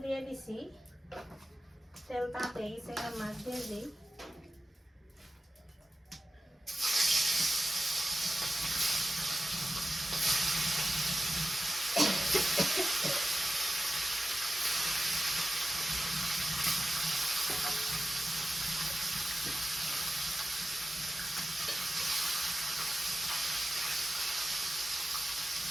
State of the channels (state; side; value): normal; both; correlation 0.94